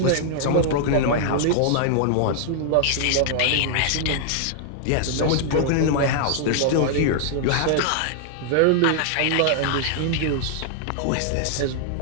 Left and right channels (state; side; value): different; both; correlation -0.01